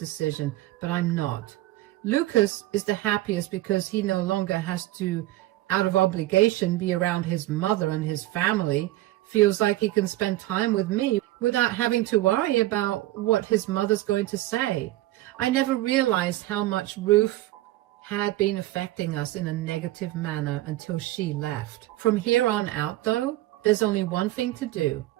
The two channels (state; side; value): quieter; left; 16.7 dB